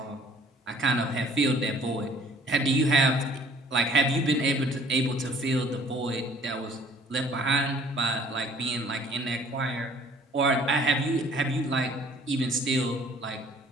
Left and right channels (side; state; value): both; normal; correlation 0.55